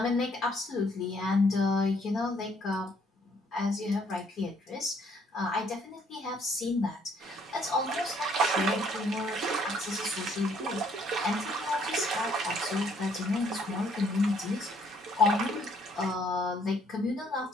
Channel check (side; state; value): both; normal; correlation 0.65